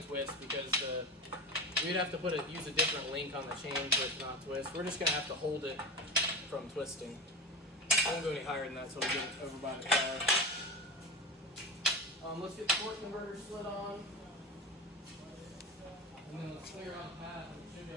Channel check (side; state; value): both; normal; correlation 0.27